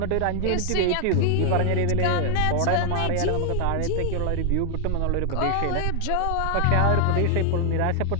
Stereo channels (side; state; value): both; different; correlation 0.00